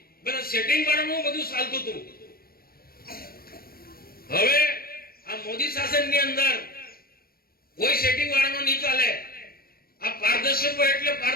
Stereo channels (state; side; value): late; right; 0.44 ms